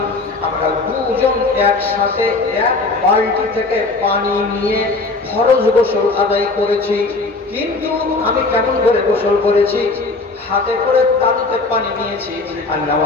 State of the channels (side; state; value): right; quieter; 3.5 dB